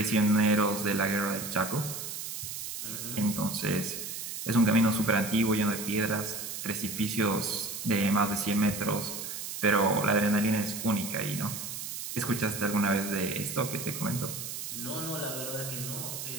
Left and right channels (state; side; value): noise; right; hiss, 7 dB below the sound